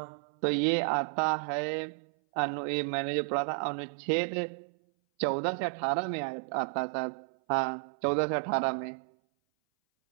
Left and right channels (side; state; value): left; silent; 57 dB below the other